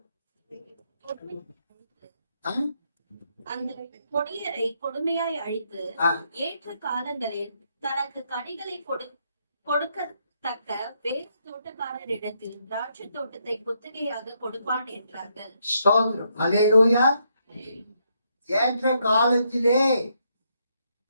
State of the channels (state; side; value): inverted; both; correlation -0.76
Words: அந்த கொடியரை கொடுமையாய் அழித்து ஏற்ற காலங்களில் தனக்கு கனிகளை கொடுக்கத்தக்க வேறு தோட்டக்காரரிடத்தில் திராட்சை தோட்டத்தை குத்தகையாக கொடுப்பான் என்றார்கள். அல்லேலூயா. ஏற்ற காலத்திலே